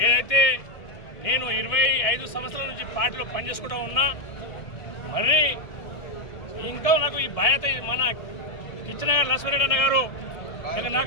ఏదైతే నేను 25 సంవత్సరాల నుంచి పార్టీలో పనిచేసుకుంటూ ఉన్నా, మరి ఇంకా నాకు ఈ బాధ్యత మన కిచ్చనగర్ లక్ష్మీరెడ్డి అన్న గారు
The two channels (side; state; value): right; late; 1.6 ms